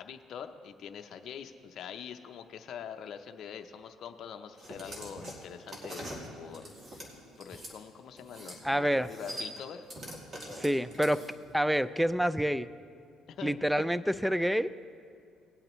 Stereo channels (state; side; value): normal; both; correlation 0.95